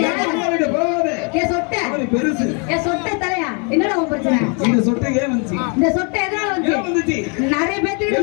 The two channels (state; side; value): quieter; right; 35.9 dB